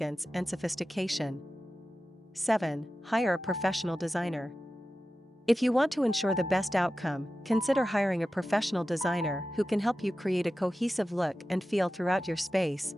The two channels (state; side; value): normal; both; correlation 0.94